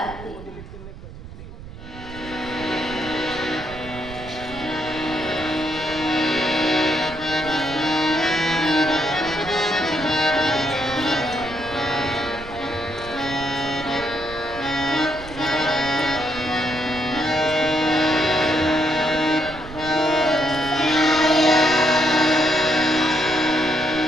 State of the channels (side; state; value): right; noise; rumble, 15 dB below the sound